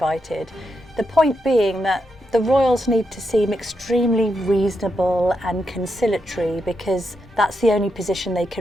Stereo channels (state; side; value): normal; both; correlation 0.84